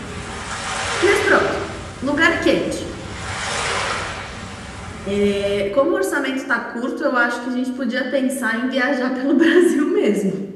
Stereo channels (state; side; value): identical; both; correlation 1.00